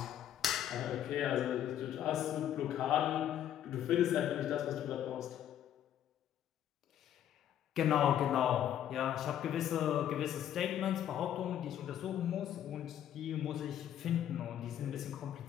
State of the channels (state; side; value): quieter; right; 10.6 dB